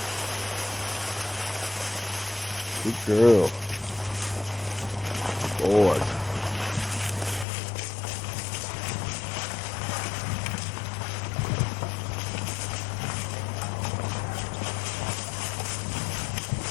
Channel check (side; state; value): right; drops out; at 7.5 s